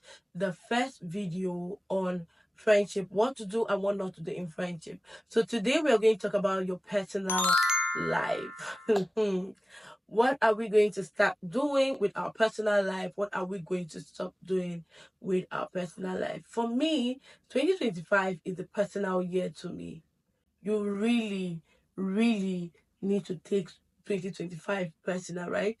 the first video on friendship, what to do and what not to do in friendship. So, today we are going to talk about your personal life. What are we going to start doing with our personal life? What are we going to stop doing with our personal life? For me, 2025 is the personal year to me. You really need to take 2025 personal, right?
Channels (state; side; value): normal; both; correlation 0.97